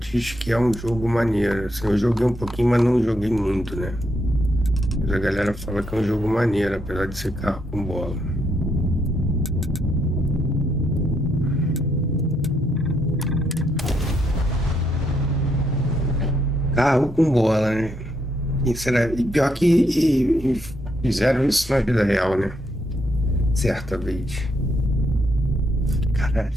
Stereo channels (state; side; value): normal; both; correlation 0.76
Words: que é um jogo maneiro. Assim, eu joguei um pouquinho, mas não joguei muito, né? Mas a galera fala que é um jogo maneiro, apesar de ser carro com bola. Carro com bola, né? E pior que fizeram isso na vida real, né? Certa vez. Caralho,